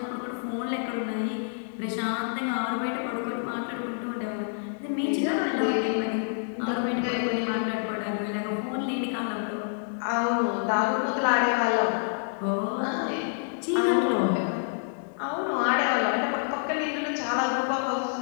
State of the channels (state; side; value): silent; right; digital silence